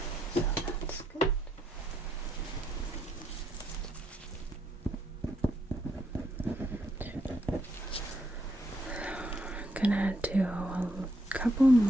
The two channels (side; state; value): both; normal; correlation 0.76